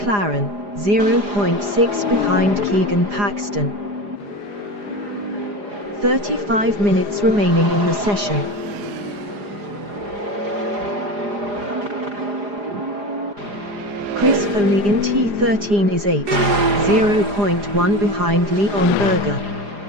0.6 behind Keegan Paxton. 35 minutes remaining in the session. Chris Foley in T13 is 8, 0.1 behind Leon Berger.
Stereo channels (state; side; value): late; left; 4.9 ms